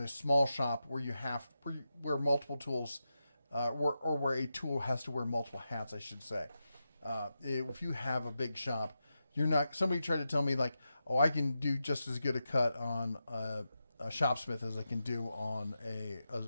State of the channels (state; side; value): inverted; both; correlation -0.89